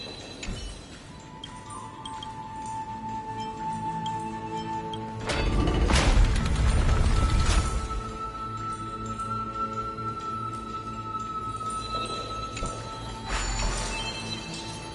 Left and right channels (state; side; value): identical; both; correlation 1.00